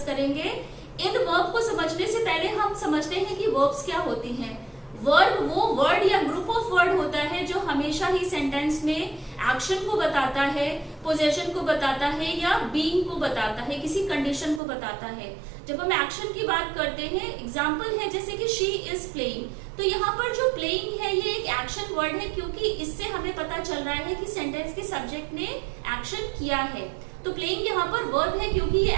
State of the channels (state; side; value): drops out; left; at 14.6 s